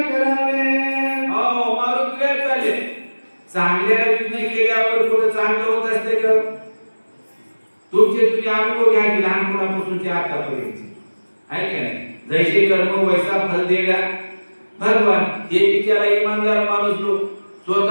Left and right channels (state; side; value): inverted; both; correlation -1.00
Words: चांगल्या निर्णय केल्यावर पुढे चांगलं होत असते का? तुमचे तुम्ही अनुभव घ्या की लहानपणापासूनचे आतापर्यंत आहे का नाही? जैसे कर्म वैसा फल देगा भगवान. हे बिचारा इमानदार माणूस लोक